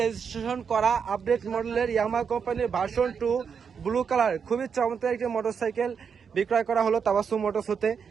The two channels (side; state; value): left; quieter; 6.5 dB